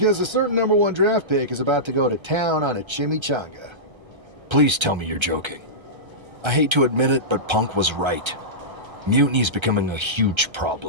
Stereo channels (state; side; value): late; left; 1.3 ms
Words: a certain #1 draft pick is about to go to town on a chimichanga. Please tell me you're joking. I hate to admit it, but Punk was right. Mutiny's becoming a huge